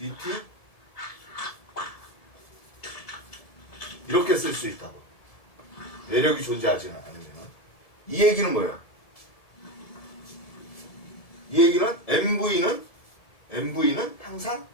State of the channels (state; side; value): late; right; 1.7 ms